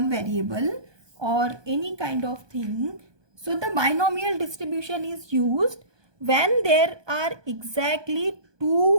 variable or any kind of thing. So the binomial distribution is used when there are exactly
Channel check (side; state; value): left; late; 1.2 ms